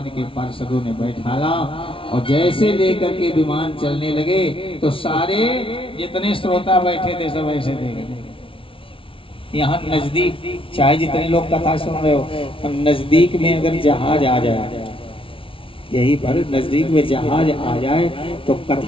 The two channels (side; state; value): right; late; 0.25 ms